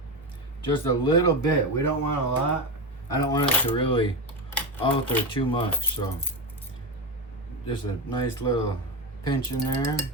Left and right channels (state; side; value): normal; both; correlation 0.14